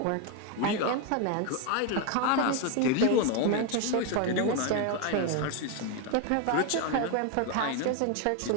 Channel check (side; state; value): both; different; correlation 0.02